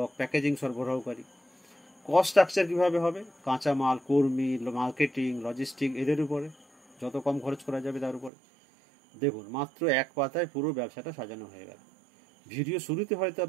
প্যাকেজিং সরবরাহকারী। কস্ট স্ট্রাকচার কীভাবে হবে? কাঁচামাল, কর্মী, মার্কেটিং, লজিস্টিক, এদের উপরে যত কম খরচ করা যাবে তার উপরে। দেখুন, মাত্র এক পাতায় পুরো ব্যবসাটা সাজানো হয়ে গেল। ভিডিও শুরুতে হয়তো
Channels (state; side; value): drops out; left; at 8.3 s